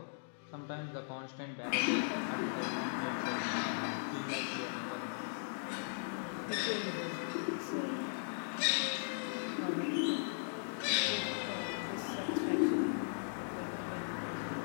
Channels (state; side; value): silent; right; digital silence